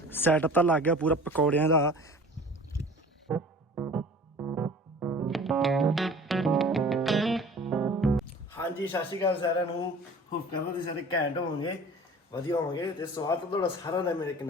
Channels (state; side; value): normal; both; correlation 0.44